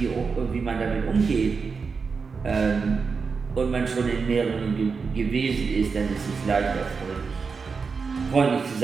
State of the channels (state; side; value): quieter; left; 5.1 dB